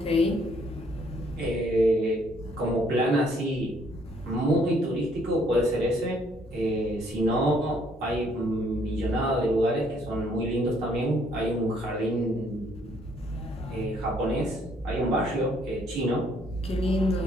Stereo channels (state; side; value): normal; both; correlation 0.66